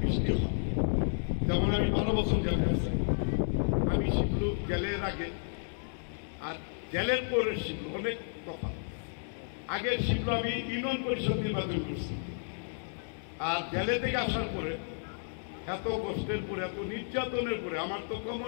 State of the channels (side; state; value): right; silent; digital silence